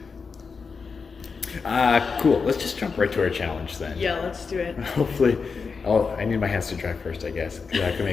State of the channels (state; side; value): quieter; right; 5.1 dB